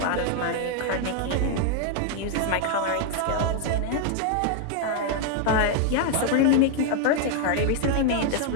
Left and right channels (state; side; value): different; both; correlation 0.00